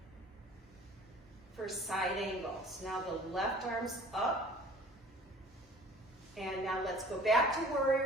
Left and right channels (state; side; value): normal; both; correlation 0.48